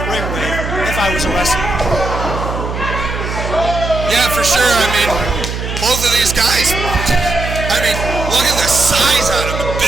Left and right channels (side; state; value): right; noise; hum, 5 dB below the sound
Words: ring with if I was a wrestler. Yeah, for sure. I mean, both of these guys, I mean, look at the size on them.